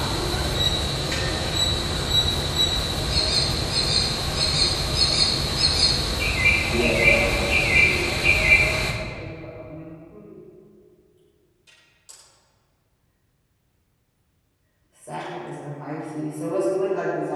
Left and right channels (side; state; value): both; identical; correlation 1.00